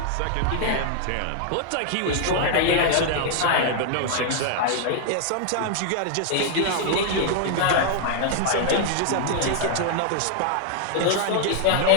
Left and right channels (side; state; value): both; different; correlation 0.00